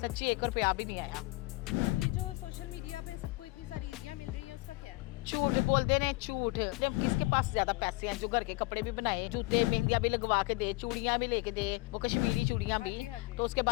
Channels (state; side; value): quieter; right; 22.7 dB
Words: सच्ची, 1 रुपया भी नहीं आया। तो ये जो सोशल मीडिया पे सबको इतनी सारी ईदियाँ मिल रही हैं उसका क्या है? झूठ बोलते ने, झूठ। जब किसके पास ज्यादा पैसे हैं जो घर के कपड़े भी बनाए, जूते मेहंदियां भी लगवा के दे, चूड़ियां भी लेके दे, वो कश्मीरी चूड़ियां हाँ भी। जी, हाँ जी। तो उसके